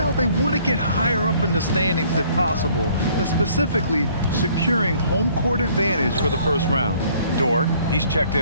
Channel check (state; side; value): inverted; both; correlation -0.60